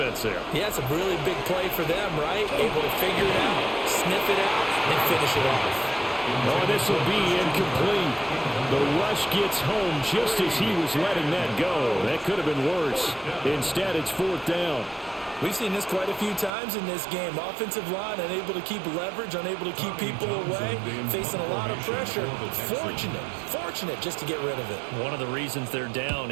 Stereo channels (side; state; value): left; drops out; at 16.5 s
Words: there. Yeah, it's a really big play for them, right? Able to figure it out, sniff it out, and finish it off. Oh, this will be incomplete. The rush gets home just as he was letting that go. That could have been worse. Instead, it's 4th down. We've seen this quite a few times in this game. Offensive line unable to keep leverage, unable to keep people away, facing a lot of pressure. Fortunate just to get rid of it. One of the reasons they're down